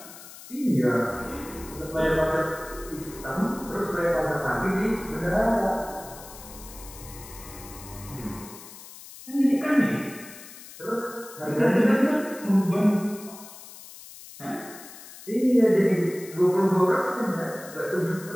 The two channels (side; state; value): left; noise; hiss, 16 dB below the sound